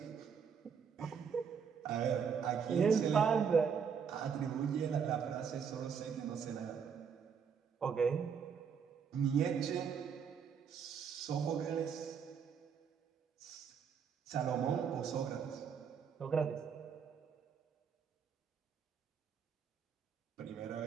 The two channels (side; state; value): left; quieter; 6.8 dB